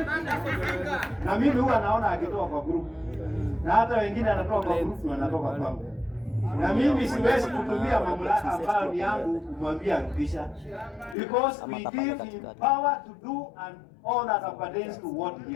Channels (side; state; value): right; drops out; at 11.2 s